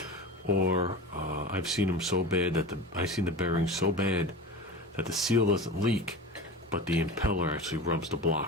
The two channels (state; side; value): normal; both; correlation 0.31